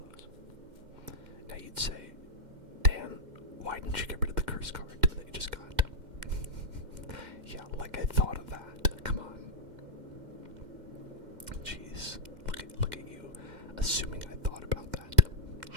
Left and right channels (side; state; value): left; late; 2.0 ms